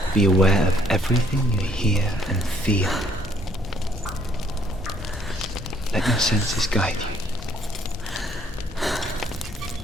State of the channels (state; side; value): normal; both; correlation 0.65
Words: Be aware of everything you hear and feel. Let your senses guide you.